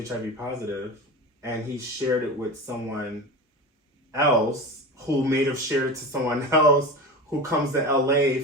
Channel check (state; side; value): normal; both; correlation 0.28